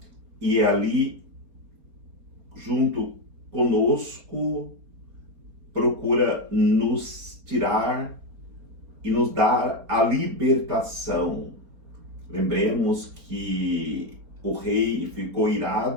e ali, junto conosco, procura nos tirar e nos dar a libertação. Lembremos que o rei ficou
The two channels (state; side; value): late; left; 4.5 ms